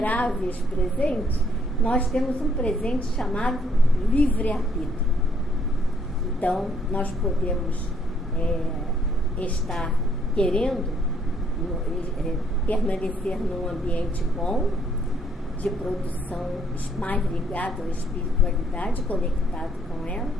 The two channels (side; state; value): both; normal; correlation 0.66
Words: presentes, nós temos um presente chamado livre-arbítrio. Então, nós podemos estar querendo permanecer num ambiente bom, de produção mais ligado à espiritualidade, conectado com ela,